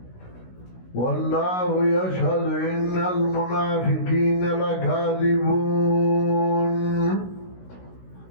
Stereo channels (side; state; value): right; late; 16 ms